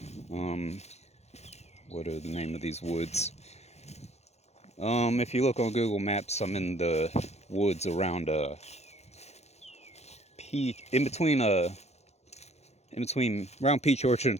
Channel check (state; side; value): late; right; 0.31 ms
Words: Um, what are the name of these woods? If you look on Google Maps, I'm in the woods around in between around Peach Orchard